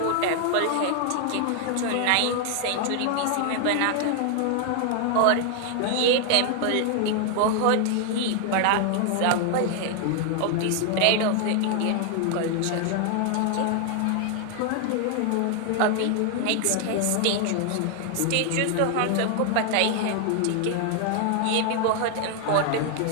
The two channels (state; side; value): different; both; correlation 0.00